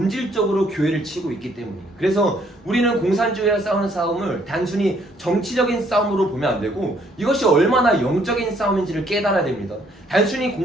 교회를 치고 있기 때문이에요. 그래서 우리는 공산주의와 싸우는 싸움을 단순히 정치적인 싸움으로 보면 안 되고 이것이 얼마나 영적인 싸움인지를 깨달아야 됩니다. 단순히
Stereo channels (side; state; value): both; normal; correlation 0.66